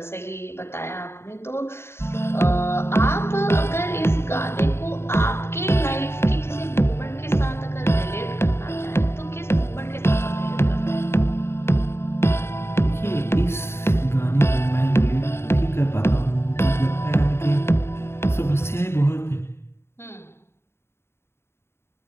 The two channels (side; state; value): right; late; 0.12 ms